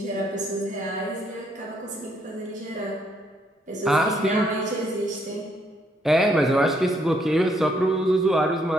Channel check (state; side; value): normal; both; correlation 0.71